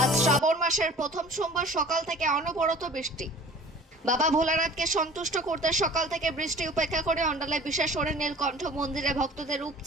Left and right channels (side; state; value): both; normal; correlation 0.46